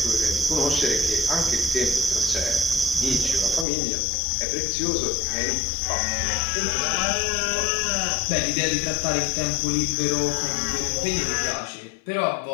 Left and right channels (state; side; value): drops out; right; at 3.7 s